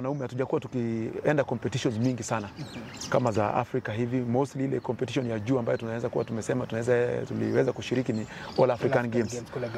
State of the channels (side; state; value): both; identical; correlation 1.00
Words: hatujakuwa tukienda competitions mingi sana kama za Afrika hivi. Mostly ile competition ya juu ambayo tunaweza kuwa tuliweza kushiriki ni All African Games